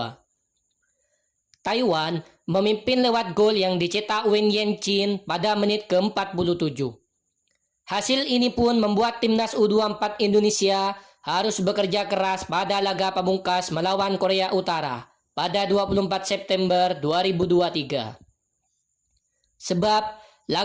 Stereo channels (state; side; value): identical; both; correlation 1.00